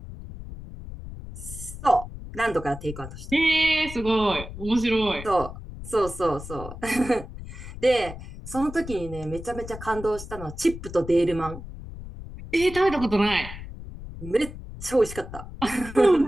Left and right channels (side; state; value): left; noise; rumble, 12 dB below the sound